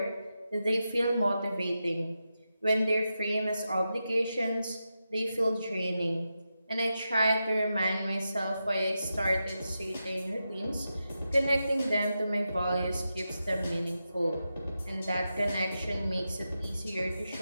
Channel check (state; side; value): inverted; both; correlation -0.89